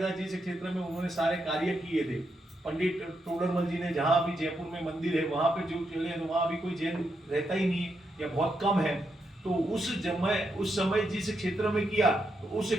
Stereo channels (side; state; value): both; normal; correlation 0.82